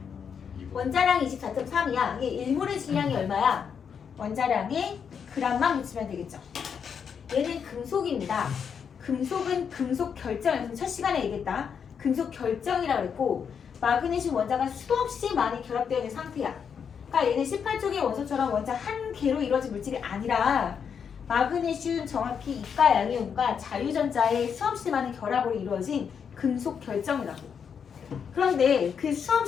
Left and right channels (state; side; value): quieter; right; 7.0 dB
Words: 원자량이 24.3이야. 이게 1몰의 질량이 얼마야? 원자량에 g만 묻히면 되겠죠. 얘는 금속입니다. 금속은 금속 결정, 첫 시간에 얘기했다. 금속 결정이라고 그랬고 마그네슘 원자가 수없이 많이 결합되어 있는 상태야. 그러니까 얘는 18쪽의 원소처럼 원자 한 개로 이루어진 물질이 아니라 마그네슘 정확히 이가 양이온과 자유전자의 수없이 많은 결합으로 이루어진 금속 결정이라고. 그런데 그